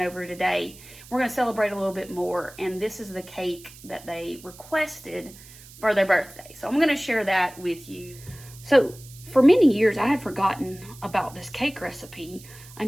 today. We're going to celebrate a little bit more. And this is the cake that they requested for their birthday. So I'm going to share that with you. So for many years, I had forgotten about this cake recipe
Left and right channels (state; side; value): noise; right; hiss, 20 dB below the sound